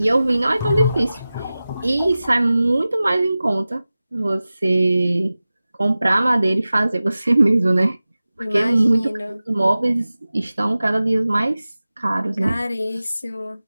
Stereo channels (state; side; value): inverted; both; correlation -0.96